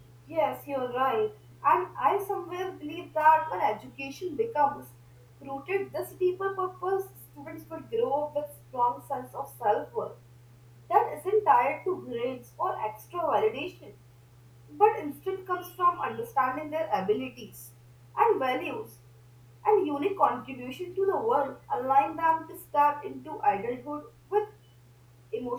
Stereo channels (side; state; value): both; identical; correlation 1.00